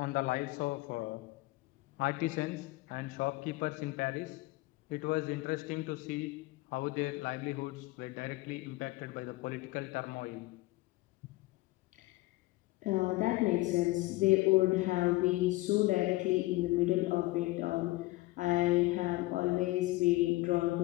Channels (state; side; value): quieter; right; 20.1 dB